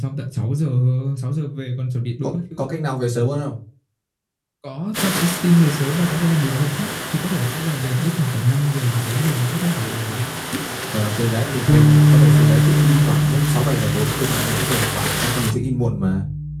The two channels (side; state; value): both; identical; correlation 1.00